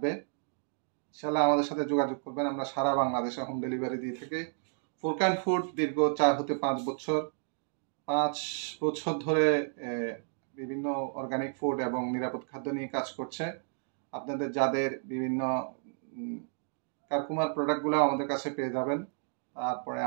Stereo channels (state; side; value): silent; left; 57 dB below the other